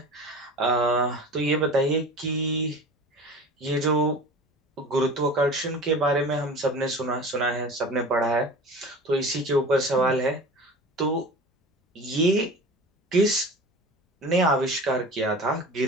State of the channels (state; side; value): normal; both; correlation 0.37